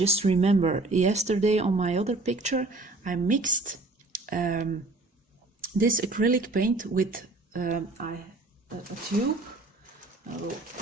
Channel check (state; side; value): quieter; left; 3.0 dB